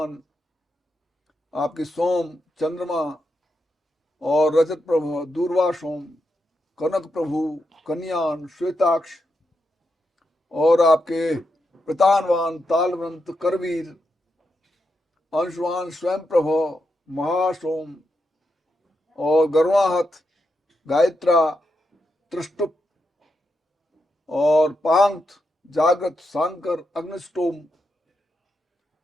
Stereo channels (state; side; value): normal; both; correlation 0.84